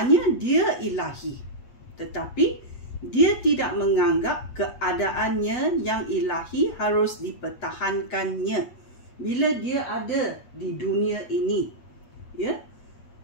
dia ilahi, tetapi dia tidak menganggap keadaannya yang ilahi harus dipertahankannya bila dia ada di dunia ini. Ya,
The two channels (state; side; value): late; right; 8.4 ms